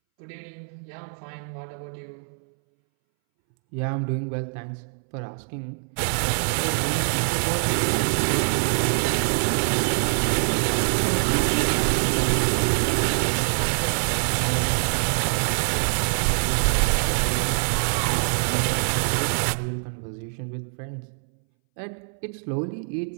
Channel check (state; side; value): silent; left; 62 dB below the other